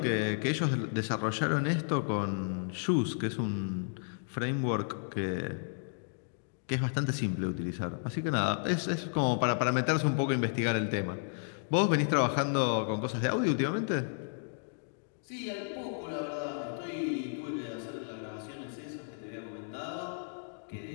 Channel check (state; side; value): silent; right; digital silence